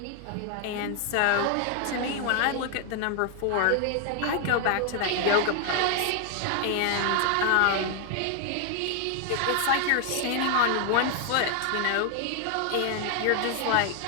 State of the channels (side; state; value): both; different; correlation 0.00